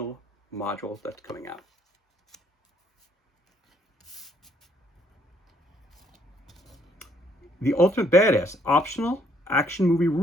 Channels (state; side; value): normal; both; correlation 0.67